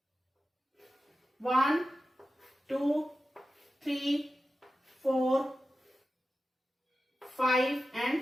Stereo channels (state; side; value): normal; both; correlation 0.93